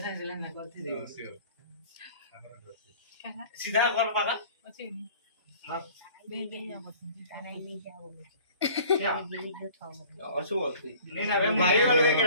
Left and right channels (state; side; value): inverted; both; correlation -0.49